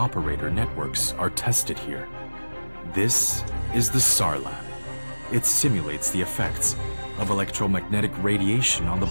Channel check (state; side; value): inverted; both; correlation -1.00